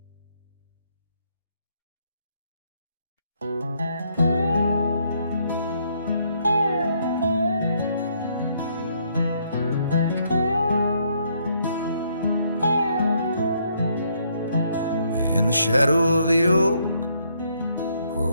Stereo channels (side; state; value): both; inverted; correlation -0.71